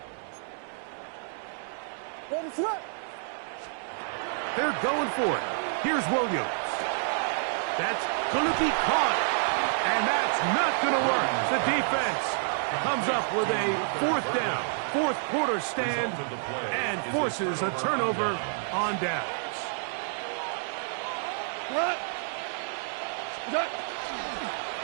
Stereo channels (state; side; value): silent; left; 59 dB below the other